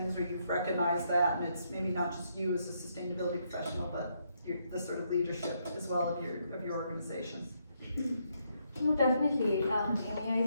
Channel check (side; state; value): both; inverted; correlation -0.76